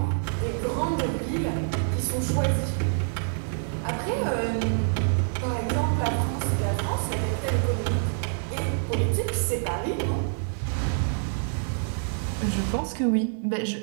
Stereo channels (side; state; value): left; silent; 58 dB below the other